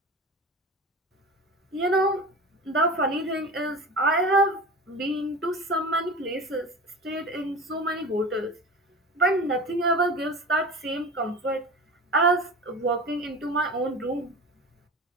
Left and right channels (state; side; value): normal; both; correlation 0.33